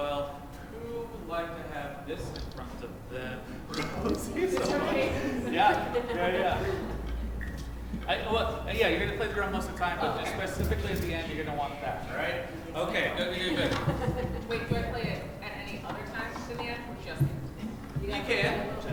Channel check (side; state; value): both; identical; correlation 1.00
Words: Who would like to have this in front of them? Yeah. Yeah, you're going to play the drum most of the time, but just specifically at the end, you're going to want that, all right? Okay, good. Wait, do I play it at any other time in the end, or just? You can.